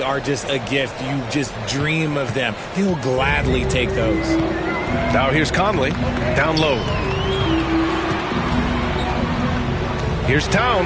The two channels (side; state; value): both; identical; correlation 1.00